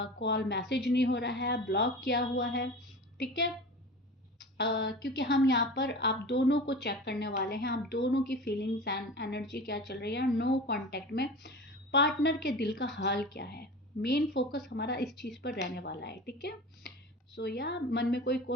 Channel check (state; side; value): normal; both; correlation 0.34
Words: कॉल मैसेज नहीं हो रहा है, ब्लॉक किया हुआ है, ठीक है। क्योंकि हम यहाँ पर आप दोनों को चेक करने वाले हैं, आप दोनों की फीलिंग्स एंड एनर्जी क्या चल रही है। नो कांटेक्ट में पार्टनर के दिल का हाल क्या है, मेन फोकस हमारा इस चीज़ पर रहने वाला है, ठीक है। सो या मन में कोई